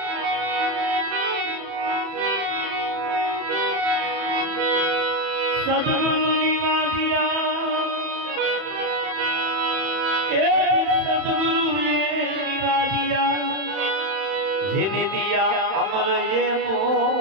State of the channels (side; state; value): left; late; 31 ms